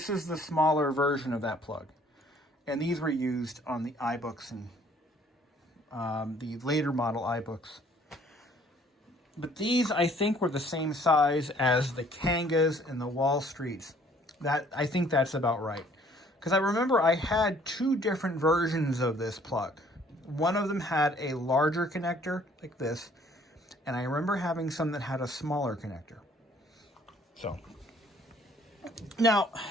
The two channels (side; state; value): both; normal; correlation 0.59